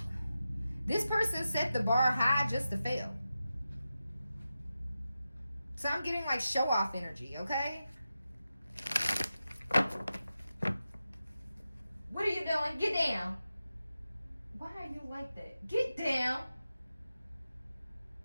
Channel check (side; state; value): both; inverted; correlation -0.92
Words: this person set the bar high just to fail. So I'm getting like show off energy, okay? What are you doing? Get down. Why are you like that? Get down.